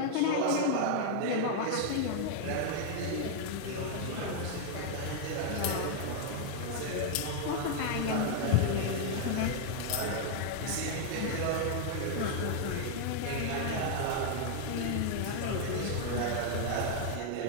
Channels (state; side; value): different; both; correlation 0.00